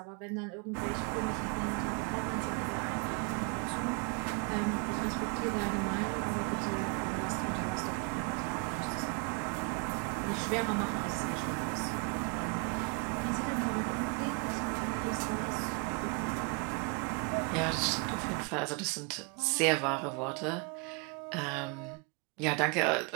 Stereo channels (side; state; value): left; quieter; 34.9 dB